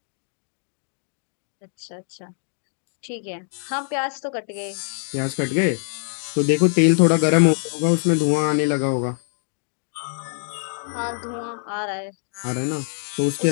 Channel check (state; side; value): silent; right; 63 dB below the other